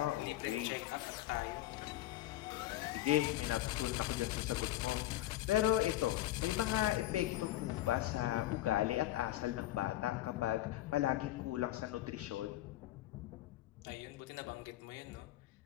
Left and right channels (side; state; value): right; quieter; 15.0 dB